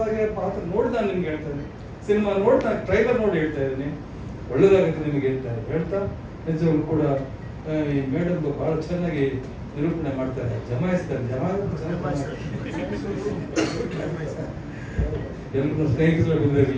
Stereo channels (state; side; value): identical; both; correlation 1.00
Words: ಪಾತ್ರ ನೋಡಿ ನಾನು ನಿಮ್ಗೆ ಹೇಳ್ತಾ ಇದ್ದೀನಿ, ಸಿನಿಮಾ ನೋಡಿ ನಾನು ಟ್ರೈಲರ್ ನೋಡಿ ಹೇಳ್ತಾ ಇದ್ದೀನಿ, ಒಳ್ಳೇದಾಗುತ್ತೆ ನಿಮಗೆ ಹೇಳ್ತಾ ನಿಜವಾಗ್ಲೂ ಕೂಡ ಈ ಮೇಡಮ್ ಬಹಳ ಚೆನ್ನಾಗಿ ನಿರೂಪಣೆ ಮಾಡ್ತಾರೆ, ಜಮಾಯಿಸ್ತಾರೆ. ಎಲ್ಲರೂ ಸ್ನೇಹಿತರು